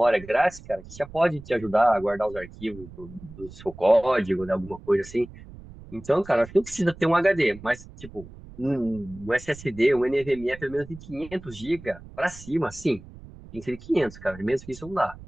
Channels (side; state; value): right; noise; rumble, 17 dB below the sound